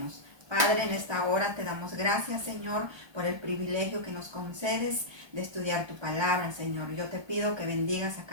Padre, en esta hora te damos gracias, Señor, por el privilegio que nos concedes de estudiar tu palabra, Señor. Yo te pido que bendigas a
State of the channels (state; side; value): late; left; 1.2 ms